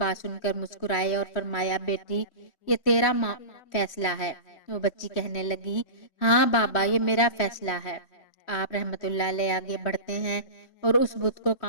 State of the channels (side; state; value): right; late; 3.0 ms